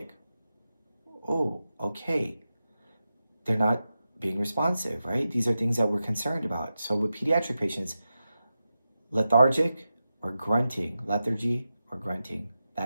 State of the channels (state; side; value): inverted; both; correlation -0.91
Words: Oh, okay. They're not being responsive, right? These are things that we're concerned about. So with pediatric patients, lethargic or grunting, lethargy or grunting,